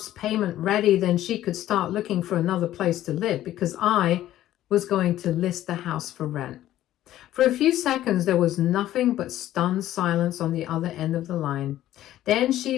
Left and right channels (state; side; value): quieter; right; 13.4 dB